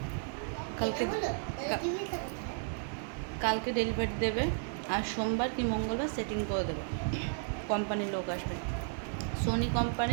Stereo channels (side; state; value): left; silent; 55 dB below the other